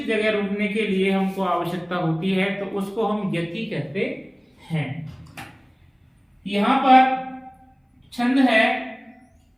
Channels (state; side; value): identical; both; correlation 1.00